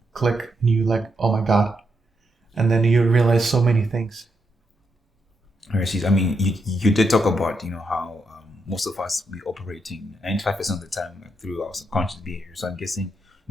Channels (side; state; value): both; normal; correlation 0.81